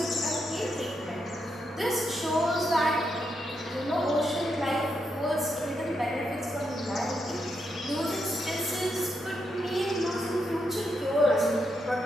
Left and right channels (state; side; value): normal; both; correlation 0.81